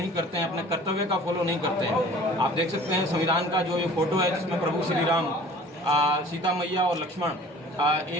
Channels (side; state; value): both; normal; correlation 0.47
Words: करते हैं, अपने कर्तव्य का फॉलो नहीं करते हैं। आप देख सकते हैं संविधान का जो ये फोटो है, जिसमें प्रभु श्री राम, सीता मैया और लक्ष्मण,